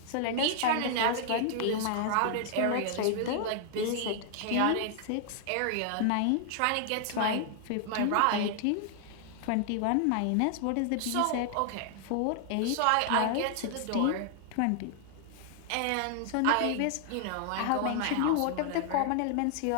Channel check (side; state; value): both; different; correlation 0.00